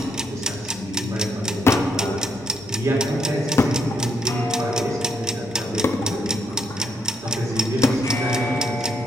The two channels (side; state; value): both; normal; correlation 0.75